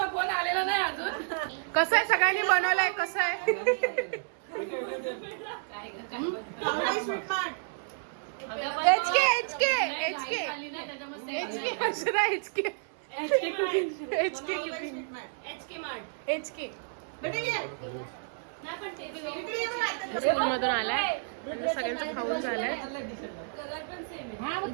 फोन आलेला नाही अजून. कसं आहे सगळ्यांनी बनवलंय कसं आहे स्वीट मार्ट। HK खाली नाही, त्याच्यामुळे Akshara HK sweet mart. HK बेटे ये। नाही पण ते स्कूल मधून आलाय आणि सगळ्यांचं खाऊन झालंय. कलर पण सेम आहे.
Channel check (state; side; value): silent; left; 56 dB below the other